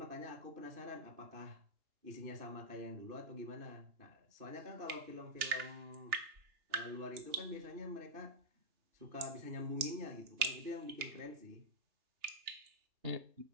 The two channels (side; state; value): left; late; 3.3 ms